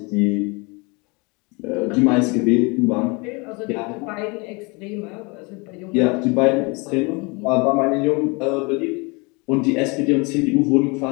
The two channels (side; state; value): right; quieter; 28.8 dB